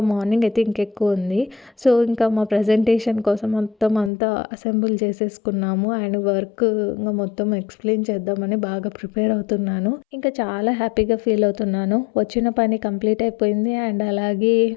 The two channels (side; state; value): right; drops out; at 4.1 s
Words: మార్నింగ్ అయితే ఇంకెక్కువ ఉంది. సో ఇంకా మా ప్రజెంటేషన్ కోసం మొత్తం అంతా అసెంబుల్ చేసేసుకున్నాము. అండ్ వర్క్ ఇంకా మొత్తం ఎక్స్ప్లెయిన్ చేద్దామని బాగా ప్రిపేర్ అవుతున్నాను. ఇంకా చాలా హ్యాపీగా ఫీల్ అవుతున్నాను. వచ్చిన పని కంప్లీట్ అయిపోయింది. అండ్ అలాగే